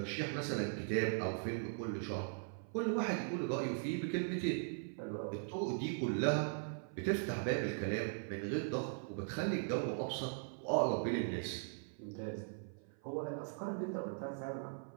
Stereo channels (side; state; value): left; silent; 51 dB below the other